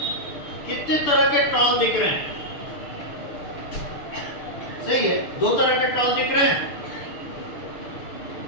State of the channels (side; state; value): right; late; 6.9 ms